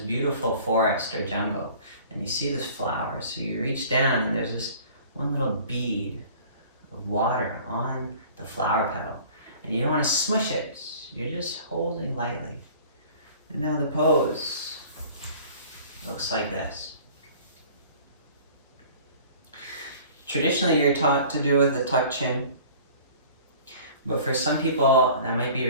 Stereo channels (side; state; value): both; inverted; correlation -0.47